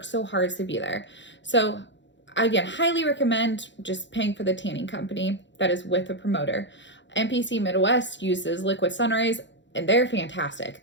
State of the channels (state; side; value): late; right; 0.53 ms